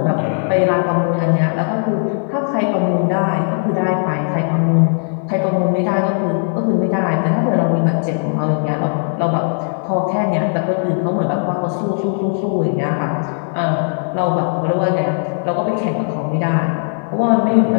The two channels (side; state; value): right; silent; 68 dB below the other